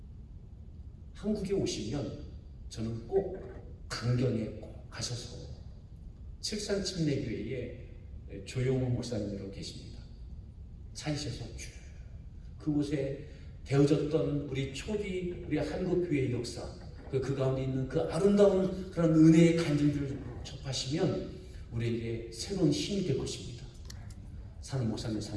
한국에 오시면 저는 꼭 강경에 꼭 가셔서 칠산침례교회에 조용호 목사님으로 계십니다. 찾으셔서 쭉 그곳에 되어졌던 우리 초기 우리 한국교회의 역사, 그 가운데 있는 그 아름다운 그런 은혜의 간증들을 접하시면 우리에게 새로운 힘이 될 것입니다. 사는 목사님,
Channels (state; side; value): identical; both; correlation 1.00